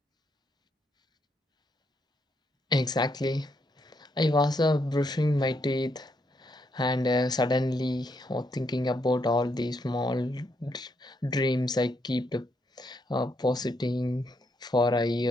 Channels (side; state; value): both; normal; correlation 0.77